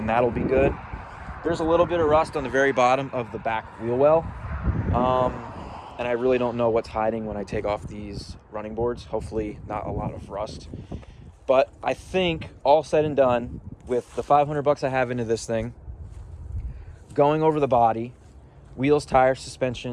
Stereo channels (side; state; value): both; identical; correlation 1.00